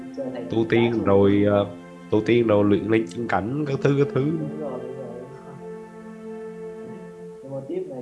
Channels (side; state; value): both; identical; correlation 1.00